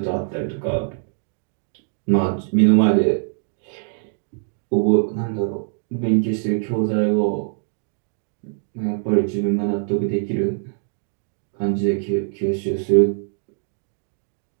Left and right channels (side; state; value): left; silent; 60 dB below the other